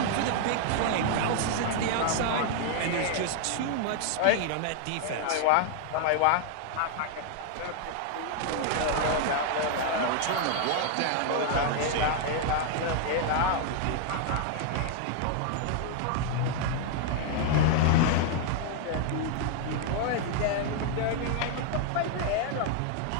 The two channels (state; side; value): different; both; correlation 0.00